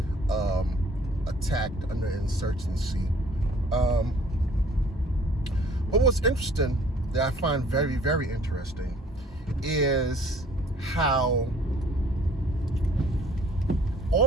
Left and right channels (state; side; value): normal; both; correlation 0.56